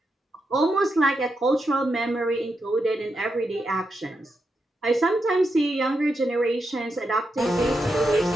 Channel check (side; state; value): both; normal; correlation 0.85